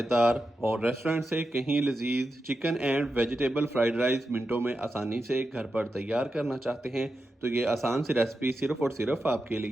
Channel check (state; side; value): normal; both; correlation 0.89